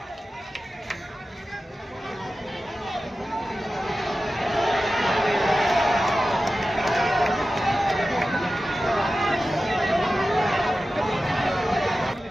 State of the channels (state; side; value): normal; both; correlation 0.94